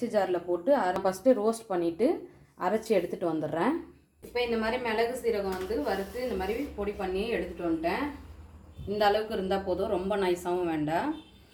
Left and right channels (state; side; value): identical; both; correlation 1.00